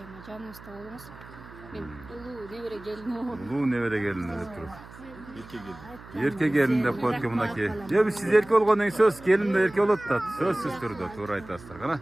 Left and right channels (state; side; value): noise; right; hum, 18 dB below the sound